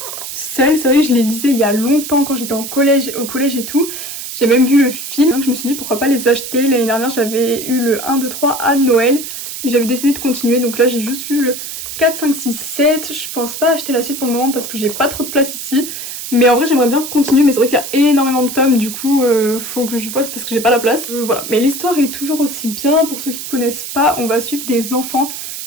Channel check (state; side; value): noise; right; hiss, 8 dB below the sound